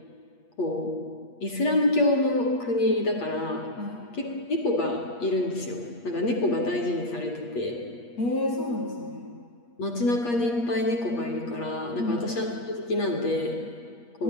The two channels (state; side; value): late; right; 8.4 ms